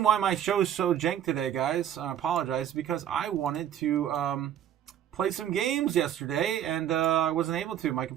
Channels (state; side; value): quieter; left; 10.4 dB